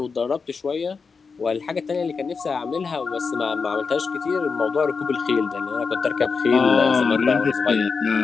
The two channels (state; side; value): quieter; right; 5.1 dB